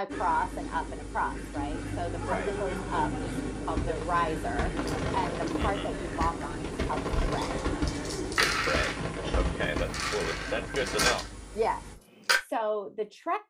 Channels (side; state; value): both; identical; correlation 1.00